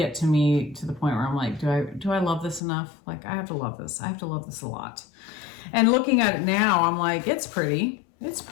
to me to the point where I'm like, do I love this enough? Like I have to love this. I have to love this a lot. And looking at it now, I'm like, it's pretty. It's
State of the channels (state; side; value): drops out; right; at 2.6 s